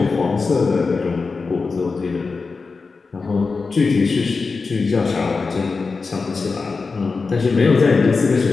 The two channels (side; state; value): right; quieter; 4.4 dB